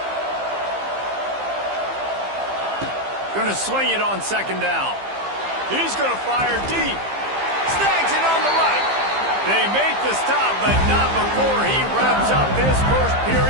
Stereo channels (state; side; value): late; left; 15 ms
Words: Going to swing it on 2nd down. He's going to fire deep. Snags it on the right. They make the stop, but not before he wraps up this first